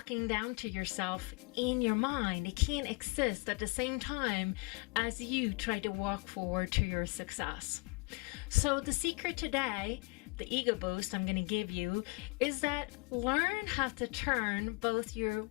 down to yourself in your mind. It can't exist at the same time as you try to walk forward to your success. So the secret today, the ego boost I'm going to give you, is that learn how to turn both your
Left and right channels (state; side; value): quieter; right; 28.8 dB